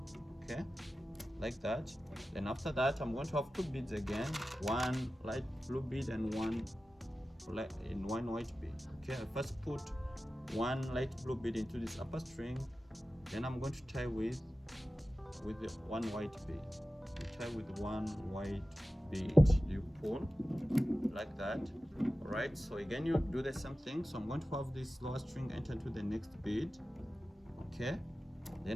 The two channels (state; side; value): normal; both; correlation 0.94